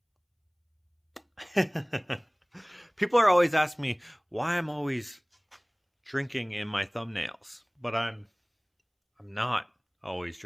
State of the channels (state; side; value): identical; both; correlation 1.00